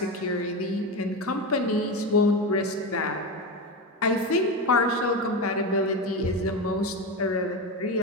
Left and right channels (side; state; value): both; normal; correlation 0.18